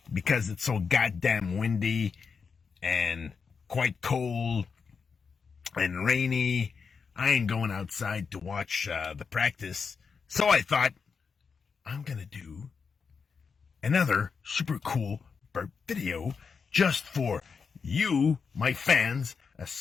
because it's so goddamn windy and quite cold and rainy, I ain't going outside to watch the practice. So I thought, I'm gonna do another super cool burp video just for you, my fans,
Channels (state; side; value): quieter; right; 5.6 dB